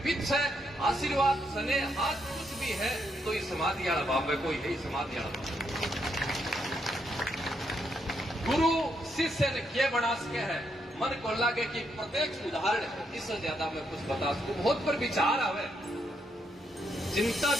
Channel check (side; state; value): both; normal; correlation 0.78